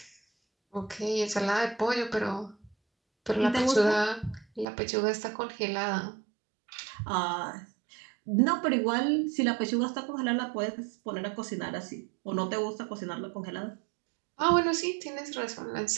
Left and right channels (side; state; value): left; drops out; at 4.7 s